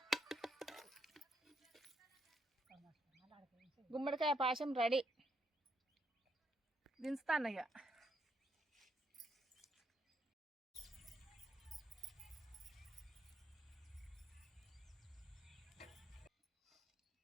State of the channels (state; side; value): normal; both; correlation 0.76